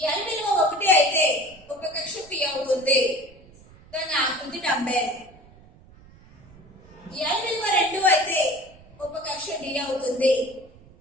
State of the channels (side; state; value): right; noise; rumble, 24 dB below the sound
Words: L విలువ 1 అయితే ఉపకక్ష P అవుతుంది. దాని ఆకృతి డంబెల్. L విలువ 2 అయితే ఉపకక్ష D అవుతుంది.